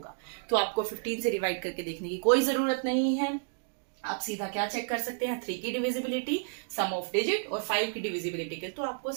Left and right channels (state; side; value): silent; left; digital silence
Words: तो आपको 15 से डिवाइड करके देखने की कोई जरूरत नहीं है, आप सीधा क्या चेक कर सकते हैं, 3 की डिविजिबिलिटी, सम ऑफ डिजिट और 5 की डिविजिबिलिटी के। तो आपको